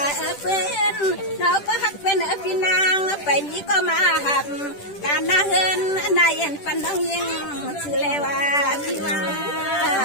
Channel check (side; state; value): right; late; 10 ms